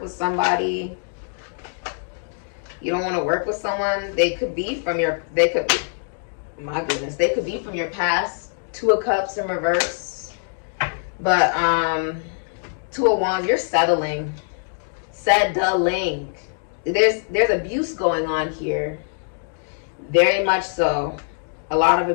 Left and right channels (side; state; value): right; silent; digital silence